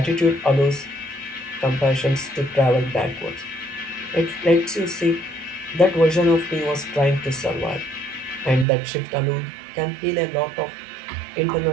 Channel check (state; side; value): drops out; left; at 8.7 s